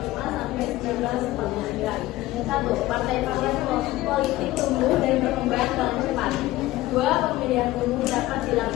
sampai 1949. 1. Partai-partai politik tumbuh dan berkembang dengan cepat. 2. Pemilihan umum dapat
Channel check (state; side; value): quieter; right; 17.1 dB